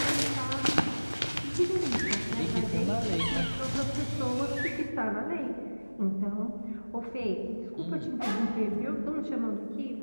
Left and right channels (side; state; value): both; inverted; correlation -1.00